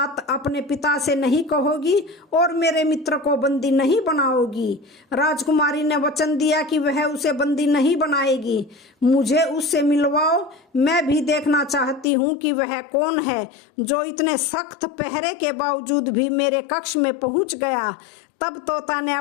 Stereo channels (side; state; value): right; drops out; at 12.1 s